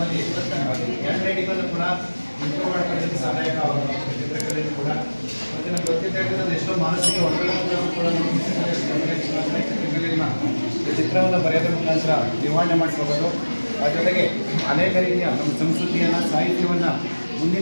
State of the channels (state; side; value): inverted; both; correlation -1.00